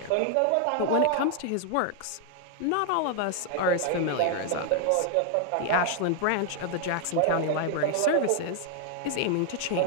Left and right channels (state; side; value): different; both; correlation 0.00